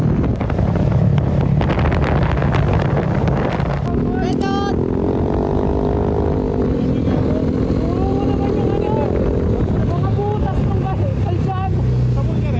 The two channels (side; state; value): both; identical; correlation 1.00